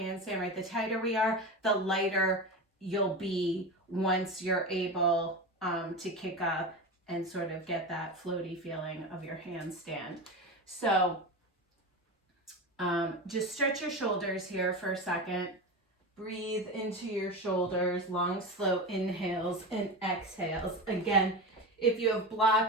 right? The tighter we are, the lighter you'll be once you're able to kick up and sort of get that floaty feeling of your handstand. So just stretch your shoulders here for a second. Breathe into your shoulders, long, slow inhales and exhales. Again, if you have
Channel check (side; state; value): both; normal; correlation 0.24